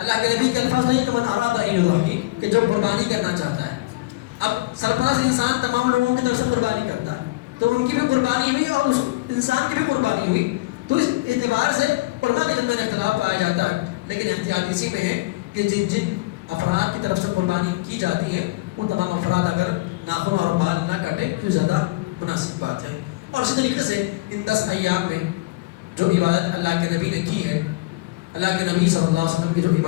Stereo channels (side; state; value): right; quieter; 21.0 dB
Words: کے نبی کے الفاظ نہیں کہ من اراد ان یضحی، کہ جو قربانی کرنا چاہتا ہے۔ اب سرپرست انسان تمام لوگوں کی طرف سے قربانی کرتا ہے تو ان کی بھی قربانی ہوئی اور اس انسان کی بھی قربانی ہوئی، تو اس اعتبار سے علماء کے درمیان اختلاف پایا جاتا ہے۔ لیکن احتیاط اسی میں ہے کہ جن جن افراد کی طرف سے قربانی کی جاتی ہے وہ تمام افراد اگر ناخن اور بال نہ کاٹیں تو زیادہ مناسب بات ہے۔ اور اسی طریقے سے ان 10 ایام میں جو عبادت اللہ کے نبی نے کی ہے، اللہ کے نبی صلی اللہ علیہ وسلم کی جو